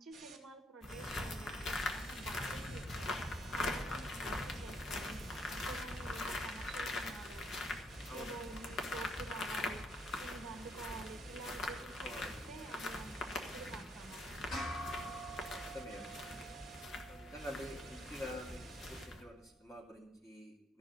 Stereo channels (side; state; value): both; normal; correlation 0.70